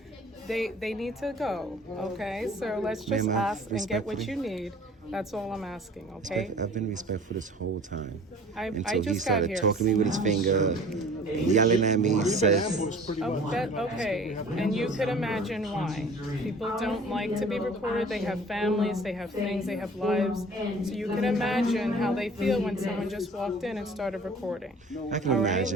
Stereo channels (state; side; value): normal; both; correlation 0.47